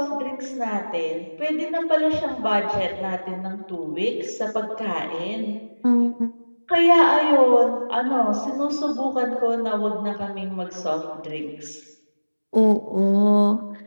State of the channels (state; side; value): inverted; both; correlation -1.00